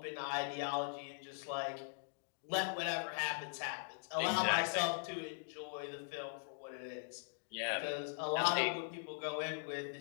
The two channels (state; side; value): silent; right; digital silence